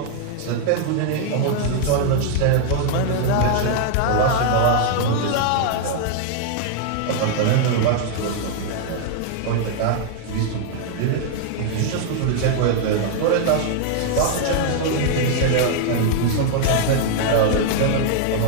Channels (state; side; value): different; both; correlation 0.00